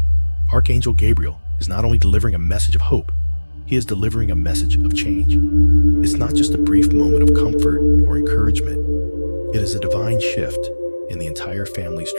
Archangel Gabriel is not only delivering a message of hope, he is delivering a message of change. It's not just a brief moment of comfort or encouragement. It is a divine shift in the entire family's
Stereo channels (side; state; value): both; inverted; correlation -1.00